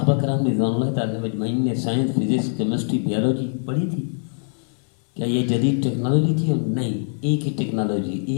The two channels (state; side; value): silent; right; 62 dB below the other